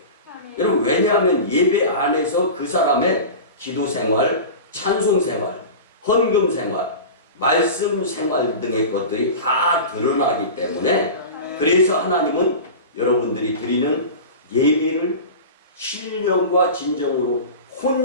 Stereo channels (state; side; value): inverted; both; correlation -0.31